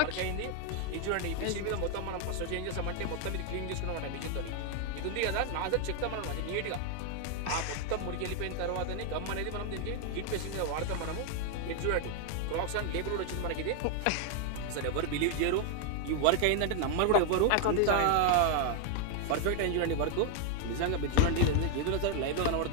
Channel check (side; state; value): both; different; correlation 0.00